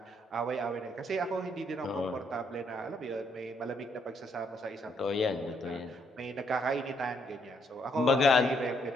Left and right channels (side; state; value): both; normal; correlation 0.72